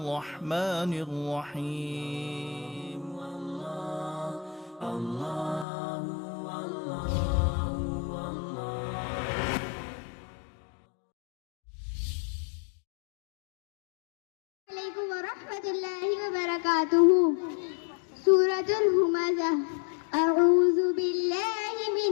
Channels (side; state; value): right; drops out; at 5.7 s